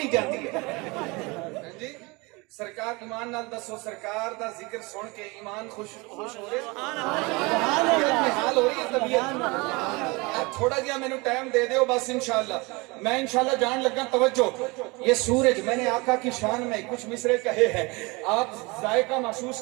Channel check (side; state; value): left; quieter; 25.9 dB